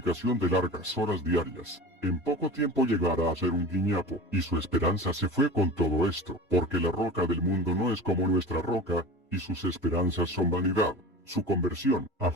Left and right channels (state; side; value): normal; both; correlation 0.33